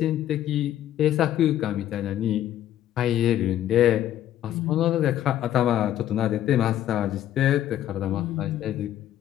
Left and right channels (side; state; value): right; quieter; 11.9 dB